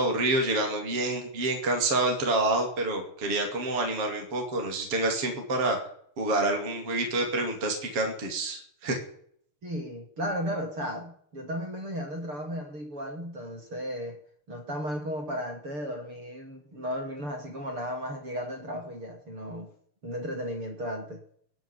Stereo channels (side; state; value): left; late; 6.8 ms